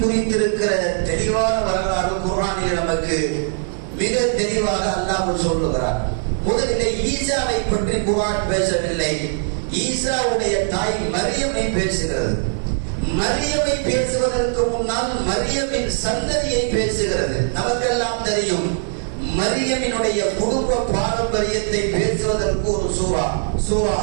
தெளிவான வரலாறு குர்ஆனில் நமக்கு மிக தெளிவாக அல்லாஹ் சொல்லுகிறார். முதலிலே ஈசாவை பற்றி குர்ஆன் பேசவில்லை, ஈசாவுடைய தாய் மரியமை பேசுகிறது. மரியமை பேசுவதற்கு முன்னால் மரியமின் சந்ததியை பேசுகிறது. நமக்கெல்லாம் தெரியும், மரியமினுடைய குடும்ப பாரம்பரியத்தை பேசுவதற்கு ஒரு சூரா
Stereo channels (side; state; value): left; silent; 65 dB below the other